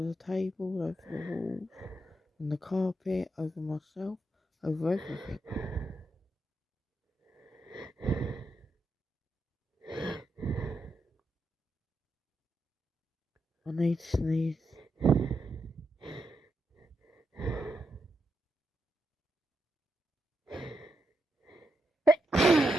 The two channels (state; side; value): normal; both; correlation 0.83